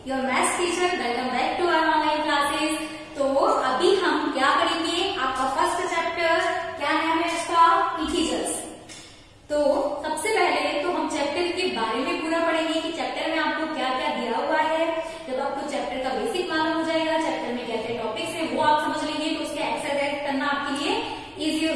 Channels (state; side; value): identical; both; correlation 1.00